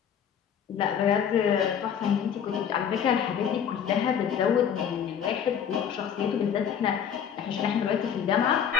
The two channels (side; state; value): right; quieter; 8.1 dB